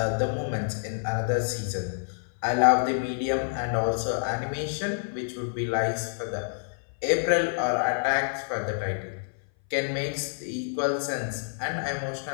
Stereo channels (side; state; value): right; silent; 57 dB below the other